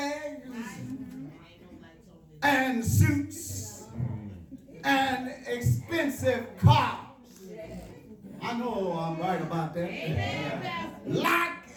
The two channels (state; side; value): identical; both; correlation 1.00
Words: and suits, and expensive cars. I know I'm right about that. Amen, Pastor.